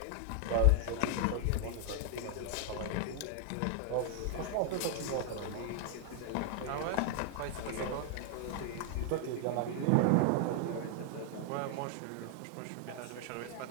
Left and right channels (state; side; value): different; both; correlation 0.00